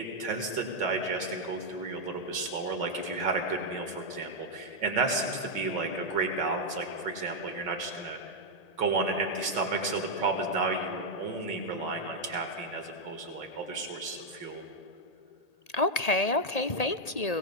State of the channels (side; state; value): right; late; 1.8 ms